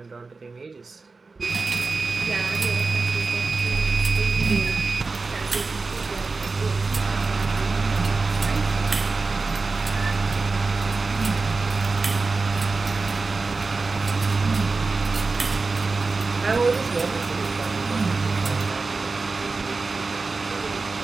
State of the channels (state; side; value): quieter; left; 4.0 dB